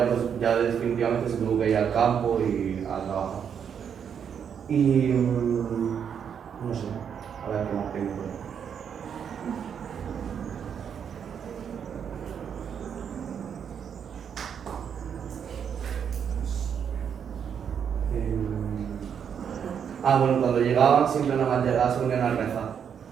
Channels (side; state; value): left; quieter; 7.7 dB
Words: ya definitivamente se tuvo que ir al campo y a trabajar. Y no sé, a ver qué más tengo por ahí. Bueno, cuando llegaban siempre nada más llegaban, se ponían a rezar,